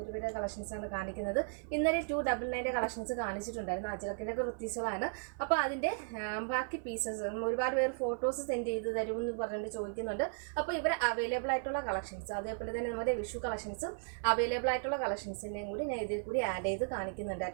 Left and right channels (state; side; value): silent; left; 54 dB below the other